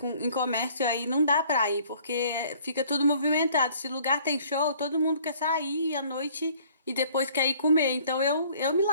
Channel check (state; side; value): inverted; both; correlation -0.56